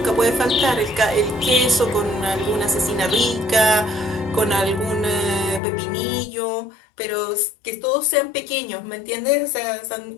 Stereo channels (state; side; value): drops out; right; at 5.6 s